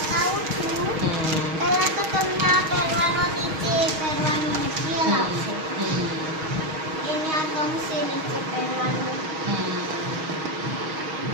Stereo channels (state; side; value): late; left; 6.4 ms